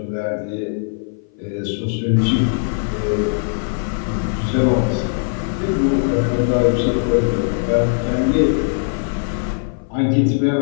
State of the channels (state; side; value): silent; right; 57 dB below the other